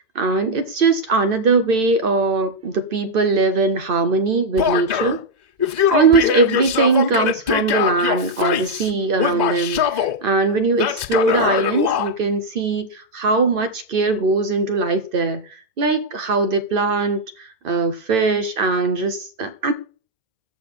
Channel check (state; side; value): late; left; 2.0 ms